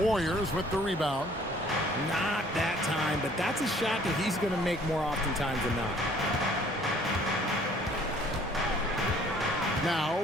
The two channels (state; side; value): normal; both; correlation 0.57